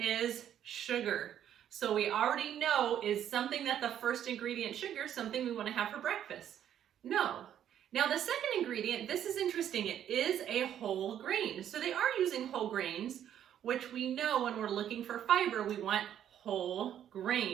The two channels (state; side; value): quieter; left; 10.2 dB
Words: is sugar. So we already know, is something that the first ingredient, sugar, something we want to have for breakfast? No. Now the second ingredient, this is interesting, it is a whole grain. So they are using whole grains, which we know when we're looking for fiber, we want whole